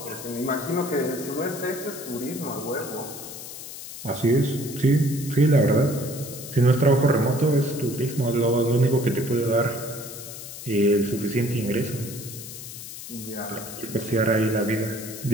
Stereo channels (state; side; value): noise; left; hiss, 11 dB below the sound